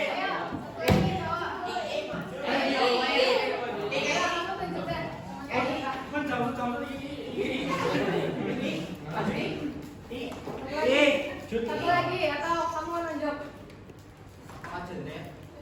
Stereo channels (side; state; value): both; identical; correlation 1.00